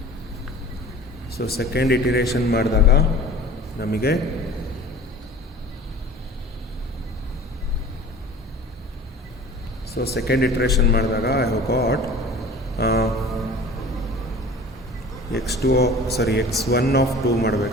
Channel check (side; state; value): both; normal; correlation 0.42